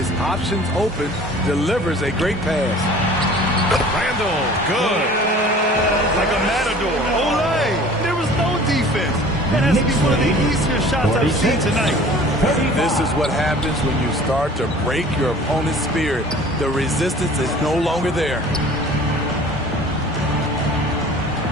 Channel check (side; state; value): both; normal; correlation 0.46